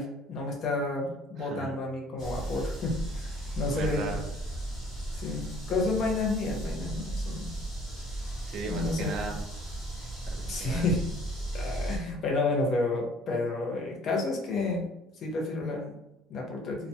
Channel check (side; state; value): both; normal; correlation 0.56